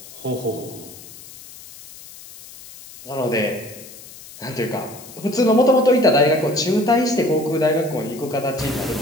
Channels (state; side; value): noise; left; hiss, 18 dB below the sound